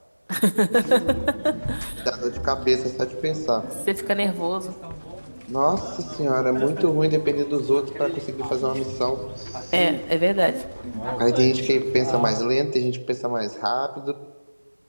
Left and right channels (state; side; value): inverted; both; correlation -1.00